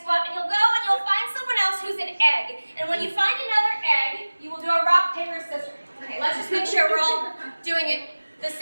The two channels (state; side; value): inverted; both; correlation -1.00